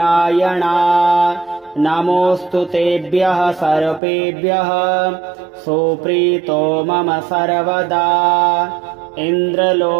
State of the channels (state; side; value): drops out; left; at 4.0 s